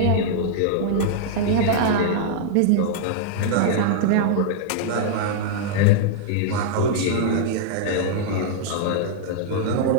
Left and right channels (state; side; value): different; both; correlation -0.01